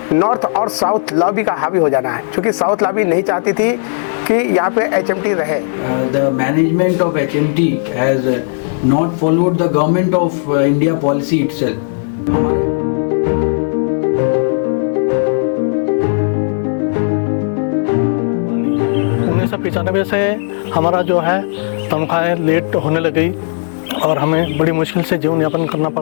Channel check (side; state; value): right; silent; digital silence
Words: नॉर्थ और साउथ लॉबी का हावी हो जाना है, क्योंकि साउथ लॉबी नहीं चाहती थी कि यहाँ पे एचएमटी रहे। The management of HMT has not followed the government of India policy itself. 1995 से हमारा जो है तनख्वाहें लेट होने लग गई और हमें बड़ी मुश्किल से जीवन यापन करना